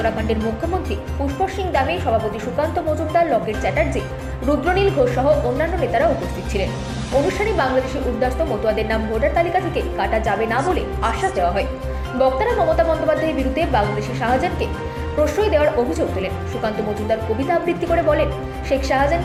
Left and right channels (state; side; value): identical; both; correlation 1.00